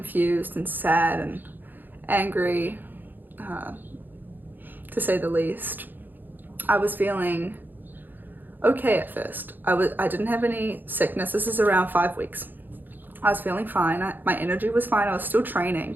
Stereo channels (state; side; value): late; left; 0.089 ms